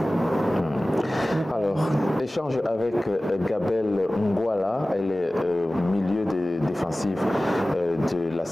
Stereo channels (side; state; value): both; normal; correlation 0.97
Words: Alors, échange avec Gabelle Ngwala, elle est milieu défensif de la